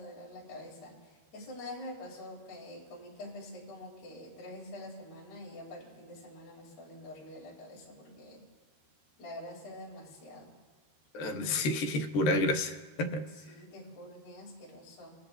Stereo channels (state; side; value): late; right; 13 ms